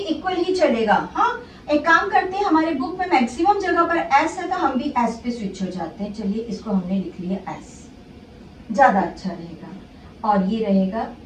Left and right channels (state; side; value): identical; both; correlation 1.00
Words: ही चलेगा। हाँ, एक काम करते हैं, हमारे बुक में मैक्सिमम जगह पर एस है तो हम भी एस पे स्विच हो जाते हैं। चलिए इसको हमने लिख लिया एस, ज्यादा अच्छा रहेगा। और ये रहेगा